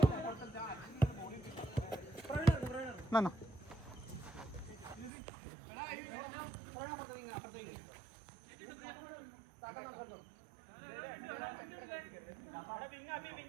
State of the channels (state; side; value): drops out; left; at 5.1 s